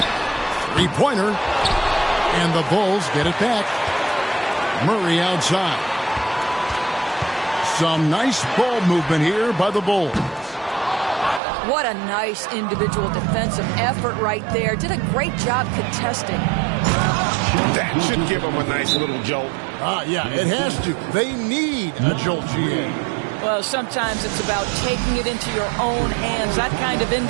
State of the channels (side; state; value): left; drops out; at 11.4 s